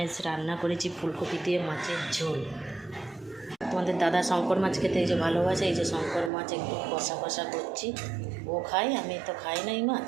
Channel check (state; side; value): drops out; left; at 6.3 s